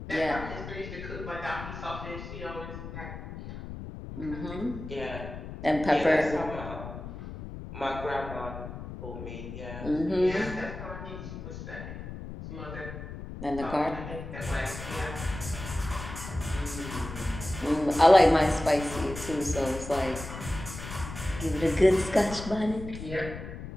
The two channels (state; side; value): noise; left; rumble, 10 dB below the sound